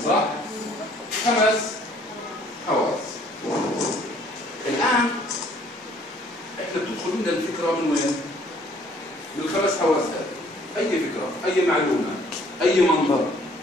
صح؟ 5 حواس. الآن احنا بتدخل لنا الفكرة من وين؟ من ال5 حواس هذه. أي فكرة، أي معلومة، أي منظر،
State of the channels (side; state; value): both; normal; correlation 0.59